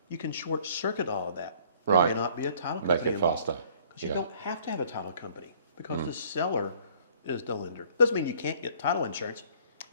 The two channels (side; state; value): both; inverted; correlation -0.57